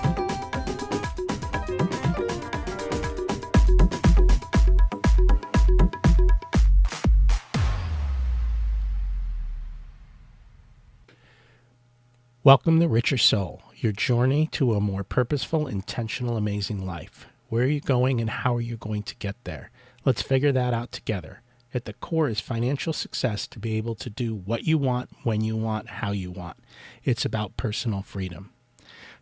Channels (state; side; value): identical; both; correlation 1.00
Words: Welcome to Richer Soul, your journey to a more purposeful, intentional, amazing life. Where are you going and how are you going to get there? Let's figure that out together. At the core is financial success to be able to do what you want, when you want, how you want. It's about personal freedom.